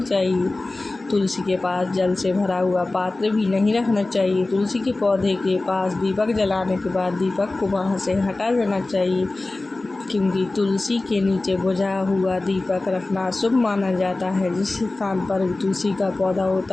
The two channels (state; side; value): quieter; right; 3.1 dB